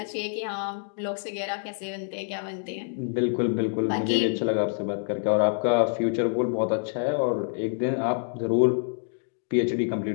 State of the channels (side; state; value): right; silent; 59 dB below the other